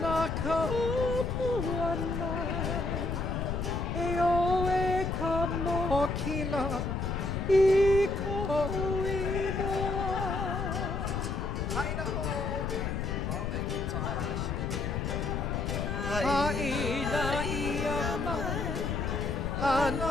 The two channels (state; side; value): noise; left; rumble, 2 dB below the sound